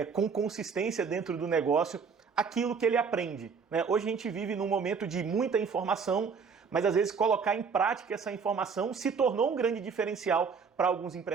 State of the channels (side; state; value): left; quieter; 5.7 dB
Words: com consistência dentro do negócio aquilo que ele aprende, né? Hoje a gente vive num momento de muita informação, mas às vezes colocar em prática essa informação se tornou um grande diferencial para alguns